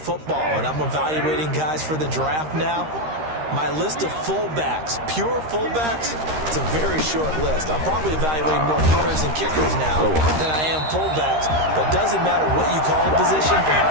and I'm evaluating guys for the draft now, my list of fullbacks, pure fullbacks, it's a very short list. I'm probably evaluating more punters and kickers now than I am fullbacks. But it doesn't matter what you call a position,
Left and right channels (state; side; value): late; left; 13 ms